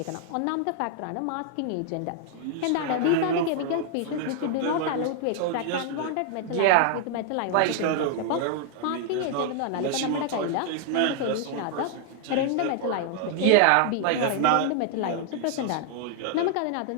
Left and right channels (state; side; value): different; both; correlation 0.00